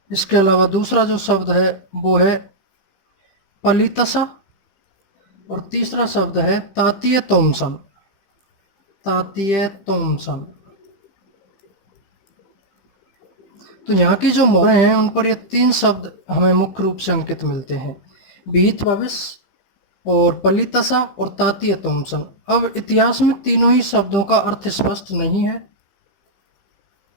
इसके अलावा दूसरा जो शब्द है वो है पलितसा, और तीसरा शब्द है तातीय तोमसन, तातीय तोमसन। तो यहाँ की जो मोहरें हैं उन पर ये 3 शब्द हमें मुख्य रूप से अंकित मिलते हैं, विहित भविष्य और पलितसा और तातीय तोमसन। अब इतिहास में तीनों ही शब्दों का अर्थ स्पष्ट नहीं है,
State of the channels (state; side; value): late; right; 15 ms